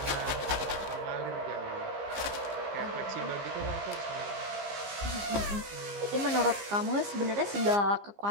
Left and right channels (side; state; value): left; late; 15 ms